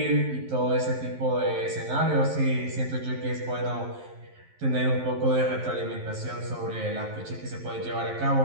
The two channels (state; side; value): late; left; 11 ms